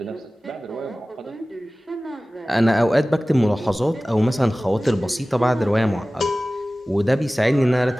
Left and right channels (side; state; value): both; normal; correlation 0.97